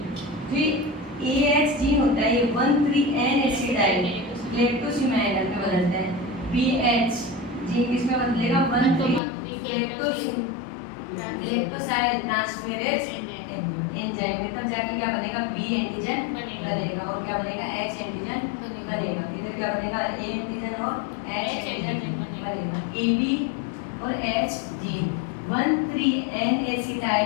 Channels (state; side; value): drops out; right; at 9.2 s